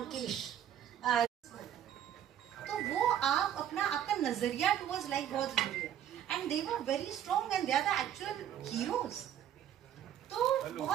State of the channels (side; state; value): left; quieter; 10.4 dB